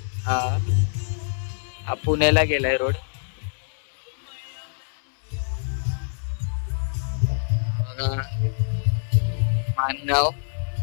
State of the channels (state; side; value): silent; right; 62 dB below the other